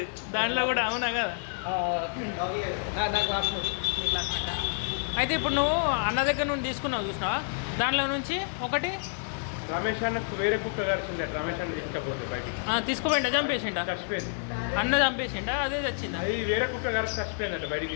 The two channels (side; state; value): right; silent; digital silence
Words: దాంట్లో కూడా అవునా కదా నా క్లాస్మేట్ అయితే ఇప్పుడు నువ్వు అన్న దగ్గర నుండి తీసుకున్నావు చూసినావా దాంట్లో నుంచి ఒకటి రమేష్ అన్న వేరే కుక్క కలిసింది రమేష్ అన్న తీసుకపోతే బయట తీసుకోపోయిందా చంపేసిండా చచ్చిపోయింది అన్న చంపేసిండా అదే చచ్చింది అది వేరే కుక్క కలిసి చచ్చిపోయింది అట్లా